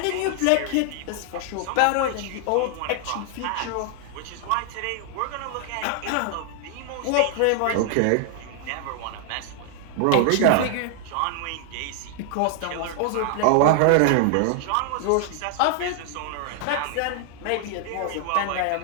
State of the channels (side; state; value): both; different; correlation 0.00